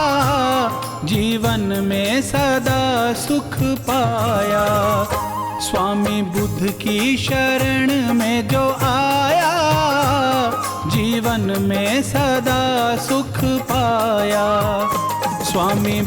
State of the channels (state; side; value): identical; both; correlation 1.00